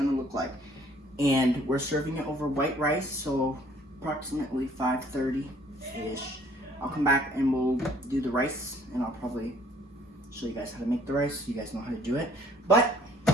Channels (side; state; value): both; normal; correlation 0.59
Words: look like. And we're serving it over white rice, so approximately 5:30-ish. I'll come back and we'll do the rice, and I'll probably show you guys how to make the rice so you guys know how to do it. But